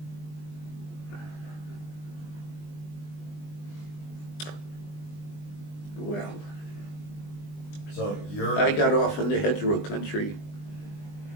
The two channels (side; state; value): right; late; 20 ms